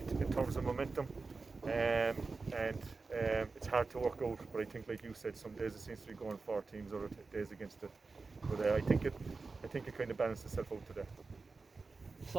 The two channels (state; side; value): quieter; left; 4.1 dB